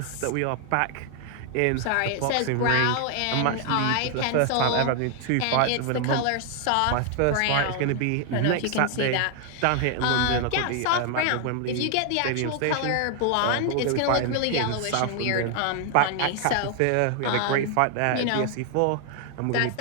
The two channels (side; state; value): both; different; correlation 0.00